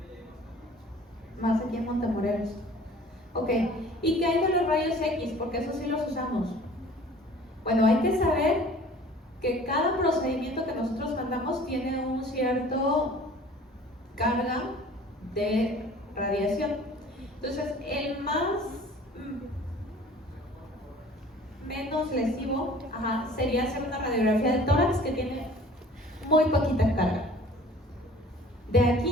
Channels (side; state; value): both; normal; correlation 0.48